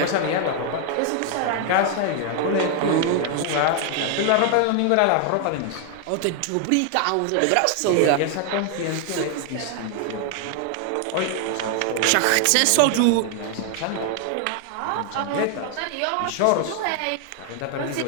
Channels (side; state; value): both; different; correlation 0.00